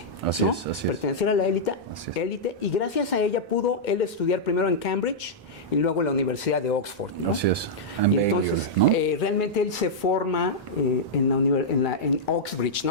Así ¿no? es, así es. Perteneciera a la Así es. élite, y gracias a ella pudo él estudiar primero en Cambridge y luego en la Universidad de Oxford, ¿no? Así es. Y entonces, ¿no? realmente él se forma en Oxbridge,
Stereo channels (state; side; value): normal; both; correlation -0.08